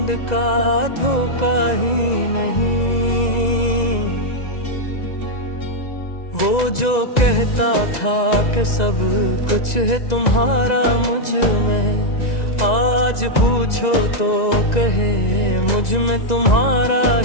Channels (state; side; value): late; right; 1.9 ms